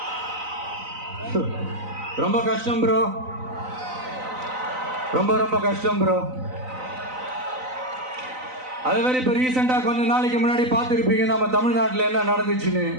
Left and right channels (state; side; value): late; left; 3.9 ms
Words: ரொம்ப கஷ்டம் ப்ரோ, ரொம்ப ரொம்ப கஷ்டம் ப்ரோ. அது வேற இப்ப ரீசெண்டா கொஞ்ச நாளைக்கு முன்னாடி பார்த்துருப்பீங்க நம்ம தமிழ்நாட்டில் என்ன நடந்துச்சுன்னு.